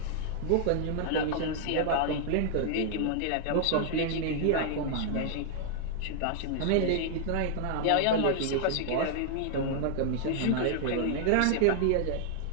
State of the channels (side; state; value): both; different; correlation -0.01